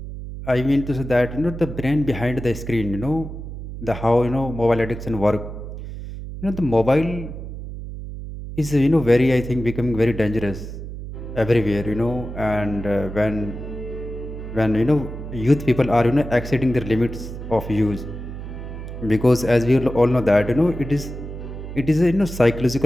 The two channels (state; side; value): noise; right; hum, 9 dB below the sound